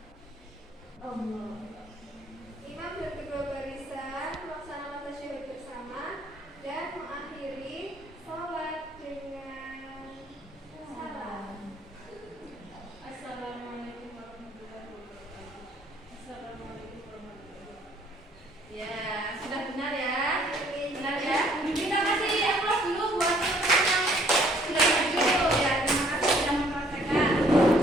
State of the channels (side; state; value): both; normal; correlation 0.61